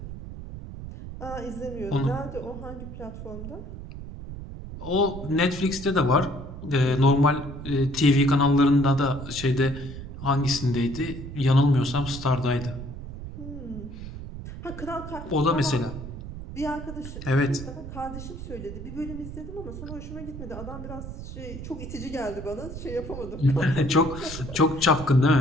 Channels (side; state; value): right; noise; rumble, 10 dB below the sound